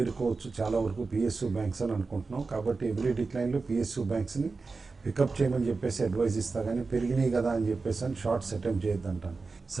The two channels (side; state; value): left; quieter; 4.1 dB